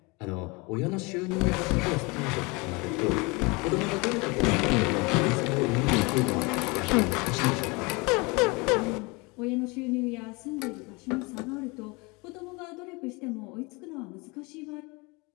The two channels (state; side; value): quieter; right; 27.2 dB